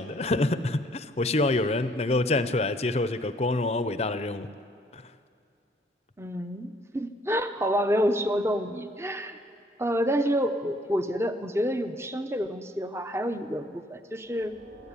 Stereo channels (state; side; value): normal; both; correlation 0.62